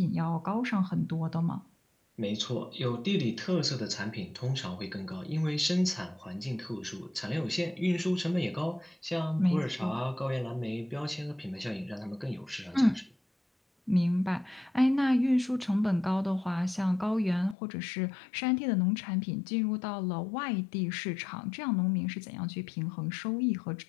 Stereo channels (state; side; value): drops out; right; at 17.6 s